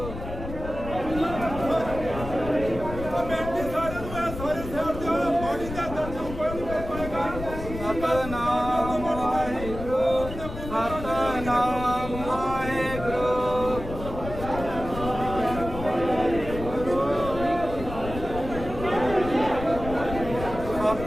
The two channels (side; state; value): left; noise; rumble, 9 dB below the sound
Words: ਬੇਨਤੀ ਸਾਰਿਆਂ ਨੂੰ ਹੈ, ਸਾਰੇ ਸ਼ਹਿਰ ਦੇ ਬਾਡੀ ਦੇ ਦਰਸ਼ਨ ਕੋਈ ਨਹੀਂ ਕਰ ਪਾਏਗਾ। ਸਤਨਾਮ ਵਾਹਿਗੁਰੂ ਸਤਨਾਮ ਵਾਹਿਗੁਰੂ।